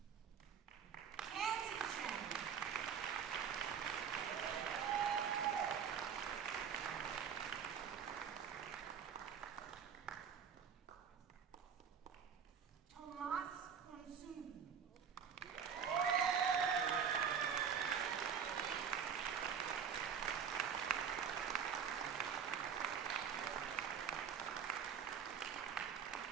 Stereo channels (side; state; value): left; quieter; 7.4 dB